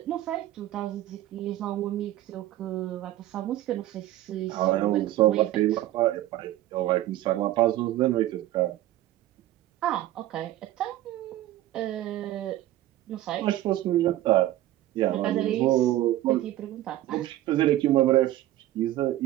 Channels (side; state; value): left; quieter; 14.5 dB